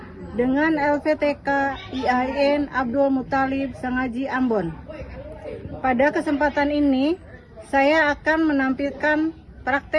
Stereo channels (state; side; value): identical; both; correlation 1.00